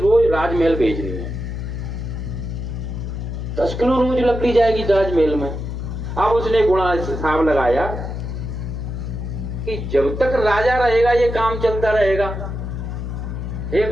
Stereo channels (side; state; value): left; noise; hum, 5 dB below the sound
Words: राजमहल भेजनी है। 10 किलो रोज लकड़ी जाएगी राजमहल में। अब उसने गुणा हिसाब लगाया कि जब तक राजा रहेगा ये काम चलता रहेगा। हे